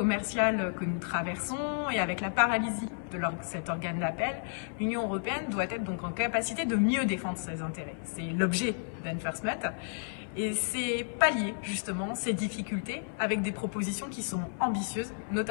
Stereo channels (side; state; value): right; silent; 57 dB below the other